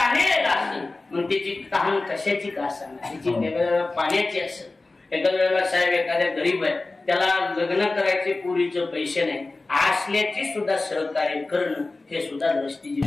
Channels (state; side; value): quieter; right; 3.3 dB